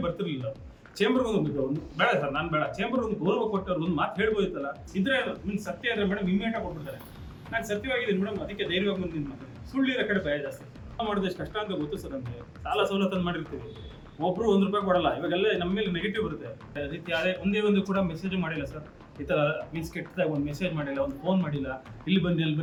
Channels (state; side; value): identical; both; correlation 1.00